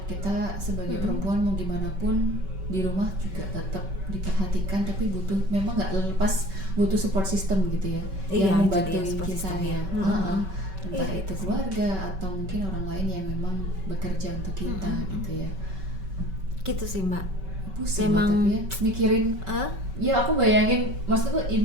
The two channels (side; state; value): left; late; 5.3 ms